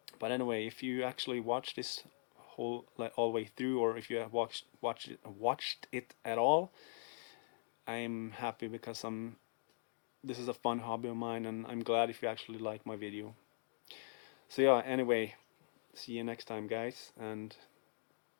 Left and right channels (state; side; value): silent; right; digital silence